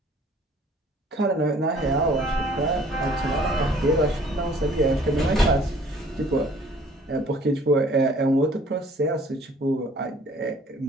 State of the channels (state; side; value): normal; both; correlation 0.55